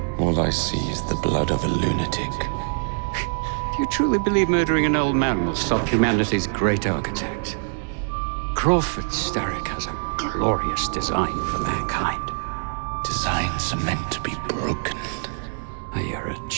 All I see is the blood of a lunatic. Do you truly believe murdering an old man will stop humanity's great architect? Crawford Starrick has a glorious design for mankind. Designs are meant to be broken. Oh, you're a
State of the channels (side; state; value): left; silent; 63 dB below the other